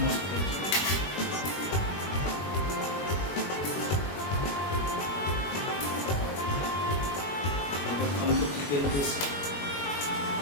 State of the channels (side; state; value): right; late; 21 ms